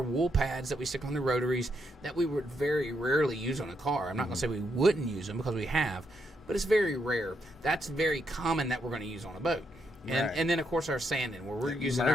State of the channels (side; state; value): both; normal; correlation 0.79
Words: wool pads that we stick on the rotaries that we would very rarely use on a car. I'm not going to say we wouldn't use them because we have, but it's very rare. That's very common that we're going to use on a boat. And then, of course, our sanding, where we're using